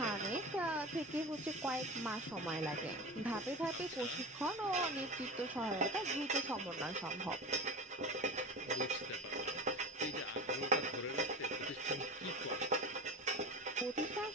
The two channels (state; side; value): normal; both; correlation 0.29